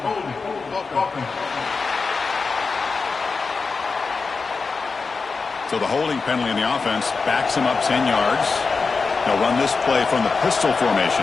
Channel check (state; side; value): quieter; right; 4.5 dB